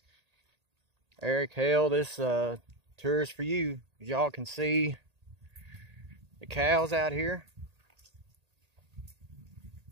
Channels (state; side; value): late; left; 1.8 ms